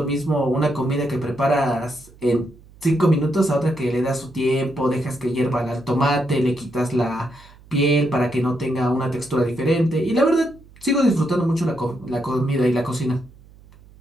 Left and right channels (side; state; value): right; noise; hum, 24 dB below the sound